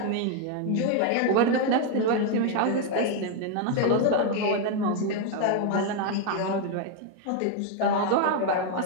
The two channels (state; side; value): different; both; correlation 0.01